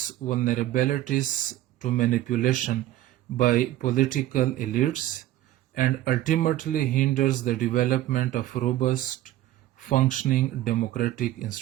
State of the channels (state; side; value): quieter; left; 14.1 dB